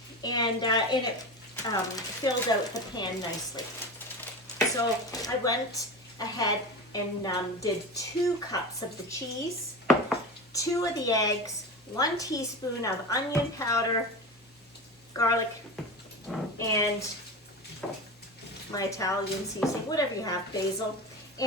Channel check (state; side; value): normal; both; correlation 0.27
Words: and it filled out the pan nicely. So I went ahead and did 2 cups of the cheese, 2 of the eggs, 1 teaspoon of onion powder, garlic, and my Italian seasoning, whatever you have, basil.